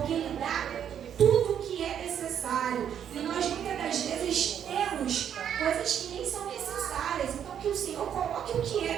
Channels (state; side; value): quieter; left; 9.1 dB